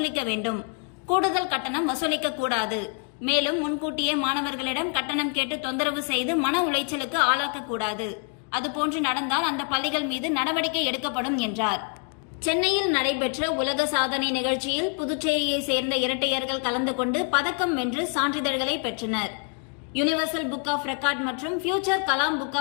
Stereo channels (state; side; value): quieter; right; 38.2 dB